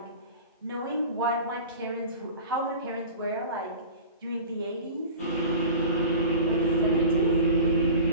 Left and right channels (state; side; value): inverted; both; correlation -0.37